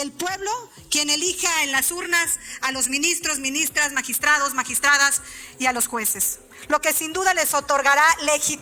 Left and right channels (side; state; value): both; identical; correlation 1.00